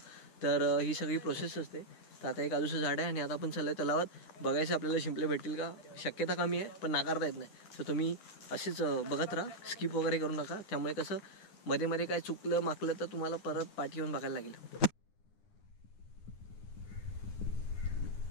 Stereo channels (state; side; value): late; right; 9.8 ms